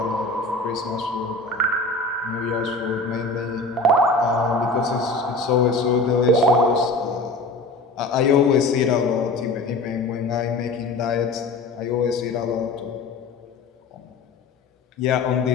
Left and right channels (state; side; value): quieter; right; 3.2 dB